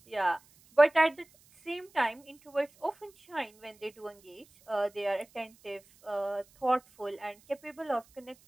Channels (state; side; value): noise; right; hiss, 29 dB below the sound